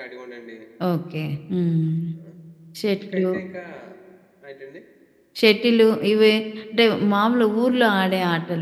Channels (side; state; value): both; identical; correlation 1.00